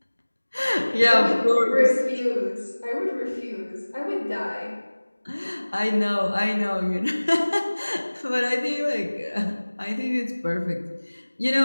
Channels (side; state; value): both; inverted; correlation -1.00